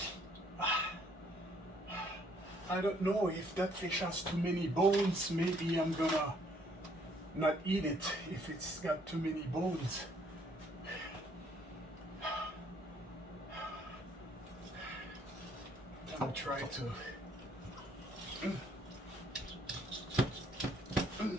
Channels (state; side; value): normal; both; correlation 0.65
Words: I don't know if that fish has too many bones. Maybe I'm gonna not eat it if it's got too many bones. I'm trying to.